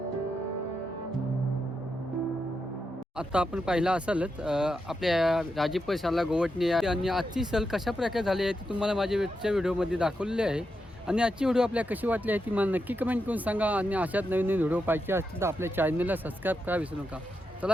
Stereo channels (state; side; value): normal; both; correlation 0.85